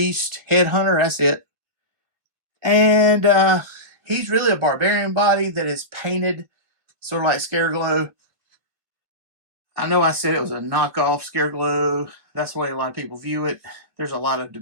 Headhunter. That's it. And he's really a barbarian body that is painted sort of like Scareglow. I know I said it was a knockoff Scareglow. That's the way a lot of people view it. There's a lot of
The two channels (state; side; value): late; left; 2.2 ms